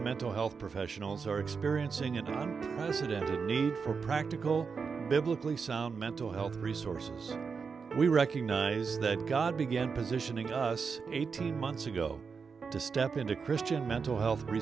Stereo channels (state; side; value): quieter; left; 5.5 dB